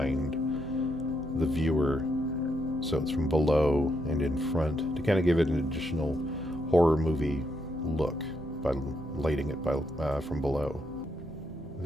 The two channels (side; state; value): both; normal; correlation 0.78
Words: the viewer, so it's from below and in front, to kind of give it an additional horror movie look by lighting it from below.